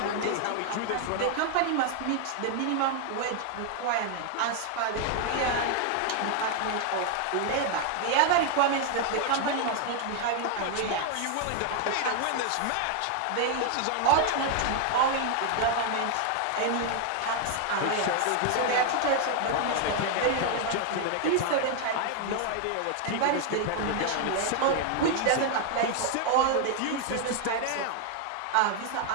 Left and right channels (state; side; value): different; both; correlation 0.00